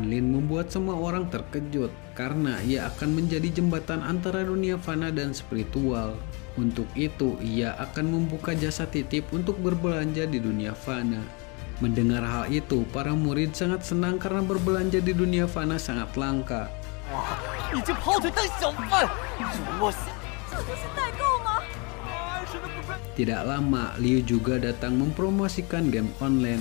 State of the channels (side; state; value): right; quieter; 30.9 dB